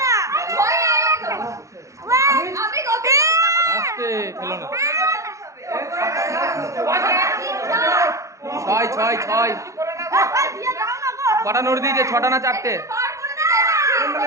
আসতে খেলো না। 6 6 6 কটা নোট দিয়েছে, 6টা না 4টে?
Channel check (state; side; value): late; left; 0.15 ms